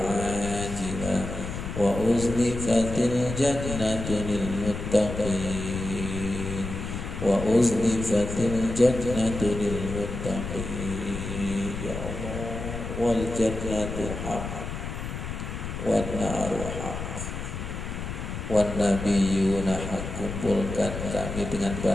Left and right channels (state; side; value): noise; left; rumble, 6 dB below the sound